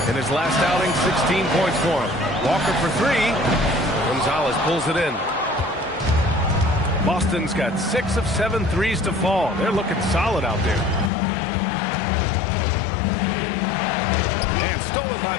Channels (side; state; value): right; drops out; at 11.1 s